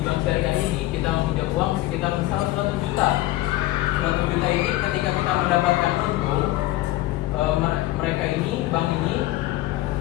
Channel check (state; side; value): quieter; right; 16.9 dB